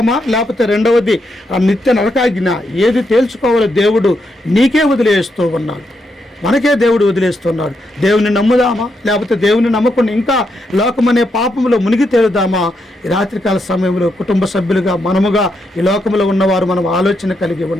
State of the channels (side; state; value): both; normal; correlation 0.81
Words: లేకపోతే రెండవది నిత్య నరకాజ్ఞ. ఏది తేల్చుకోవాలో దేవుడు నీకే వదిలేస్తూ ఉన్నాడు, మనకే దేవుడు వదిలేస్తున్నాడు. దేవుని నమ్ముదామా, లేకపోతే దేవుని నమ్మకుండా ఇంకా లోకమనే పాపంలో మునిగి తేలుదామా? ఈ రాత్రికాల సమయంలో కుటుంబ సభ్యులుగా మనముగా ఈ లోకంలో ఉన్నవారు మనం ఆలోచన కలిగి